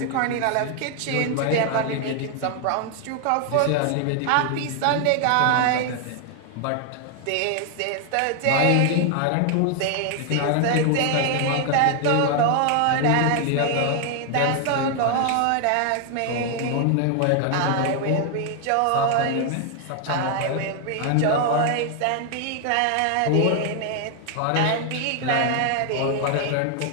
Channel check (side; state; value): both; different; correlation 0.00